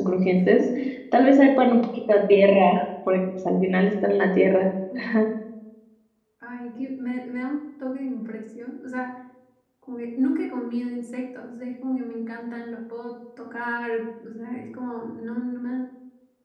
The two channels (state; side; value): identical; both; correlation 1.00